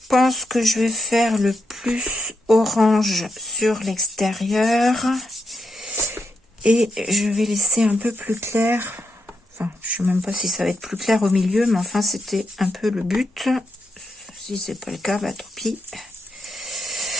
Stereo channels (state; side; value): normal; both; correlation 0.83